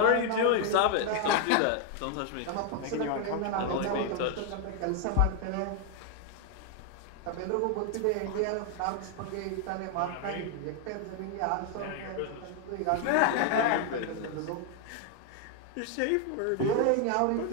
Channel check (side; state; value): both; different; correlation 0.01